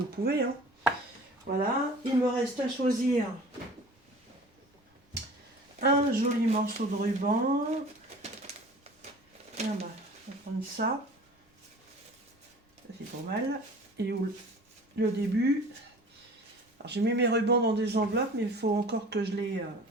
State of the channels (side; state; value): both; normal; correlation 0.43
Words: pouvez. Hein. Voilà, il me reste à choisir un joli morceau de ruban. Ah bah, on va prendre ça. Ça c'est pas mal. Et où le début. Alors j'ai mis mes rubans dans des enveloppes, mais il faut encore que je les